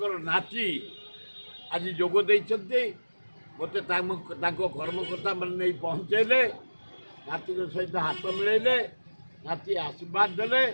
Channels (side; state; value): both; inverted; correlation -1.00